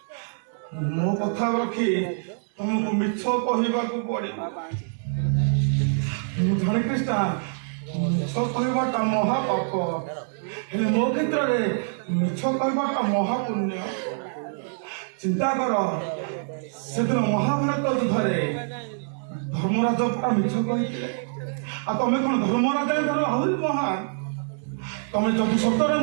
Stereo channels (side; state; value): left; silent; 62 dB below the other